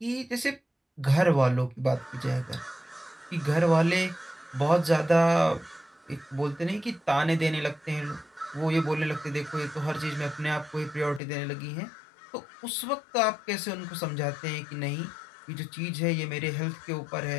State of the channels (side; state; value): right; drops out; at 11.2 s